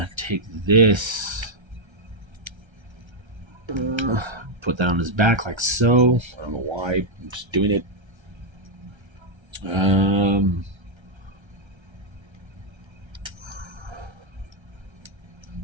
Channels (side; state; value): left; late; 1.3 ms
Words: Take this. Put that on his back like so. I don't know why. I'm just doing it.